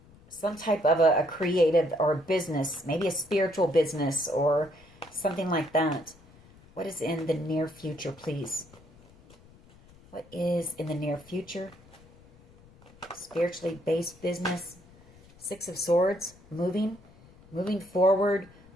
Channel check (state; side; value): noise; left; rumble, 25 dB below the sound